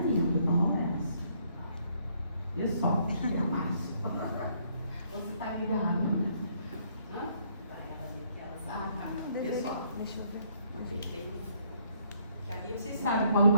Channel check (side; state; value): both; inverted; correlation -0.68